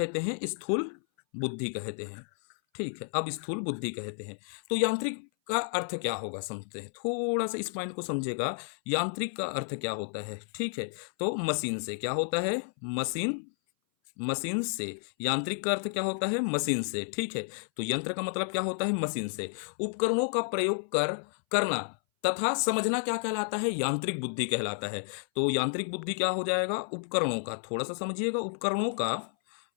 हैं? स्थूल बुद्धि कहते हैं। ठीक है, अब स्थूल बुद्धि कहते हैं। तो यांत्रिक का अर्थ क्या होगा समझते हैं, थोड़ा सा इस पॉइंट को समझेगा। यांत्रिक का अर्थ क्या होता है? ठीक है, तो मशीन से। क्या होता है? मशीन, मशीन से। यांत्रिक का अर्थ क्या होता है? मशीन से। ठीक है, तो यंत्र का मतलब क्या होता है? मशीन से। उपकरणों का प्रयोग करना तथा समझना क्या कहलाता है? यांत्रिक बुद्धि कहलाता है। तो यांत्रिक बुद्धि क्या हो जाएगा? उपकरणों का, थोड़ा सा समझिएगा, उपकरणों का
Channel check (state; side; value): silent; right; 57 dB below the other